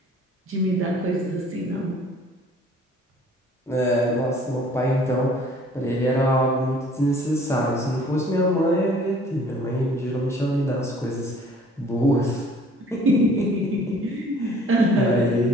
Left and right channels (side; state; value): both; normal; correlation 0.54